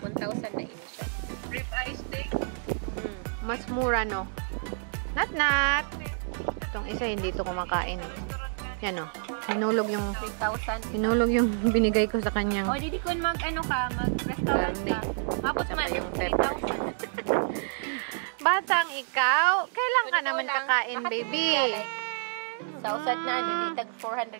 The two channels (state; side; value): silent; left; digital silence